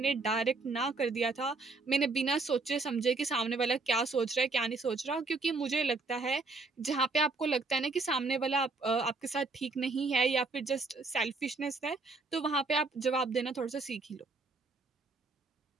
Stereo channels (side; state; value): left; quieter; 3.6 dB